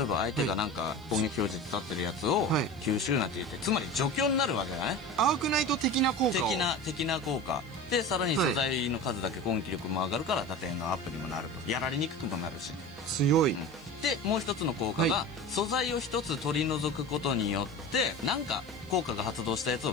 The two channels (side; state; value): right; noise; hiss, 29 dB below the sound